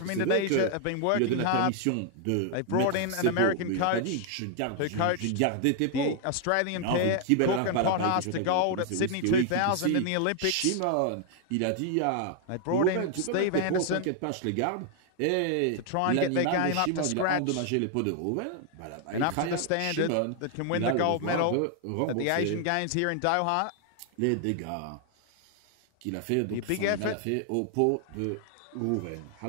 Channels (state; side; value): different; both; correlation 0.00